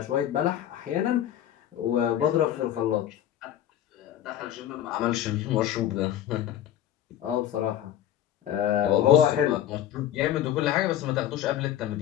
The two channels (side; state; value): right; quieter; 11.4 dB